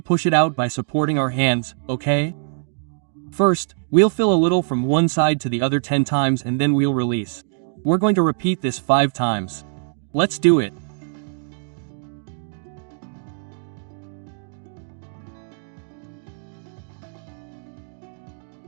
it out by supporting our hands, okay? First, we'll fill a little from one side to the other 10 times and then we'll release. We're going to repeat this 5 times. Let's do it.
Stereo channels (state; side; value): silent; left; digital silence